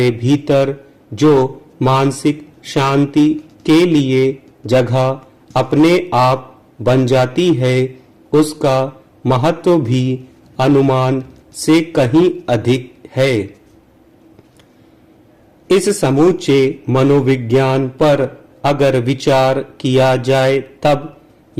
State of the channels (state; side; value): identical; both; correlation 1.00